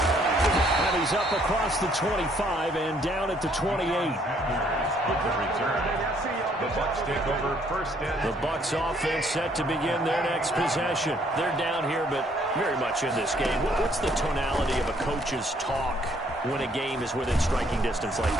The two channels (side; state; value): both; normal; correlation 0.65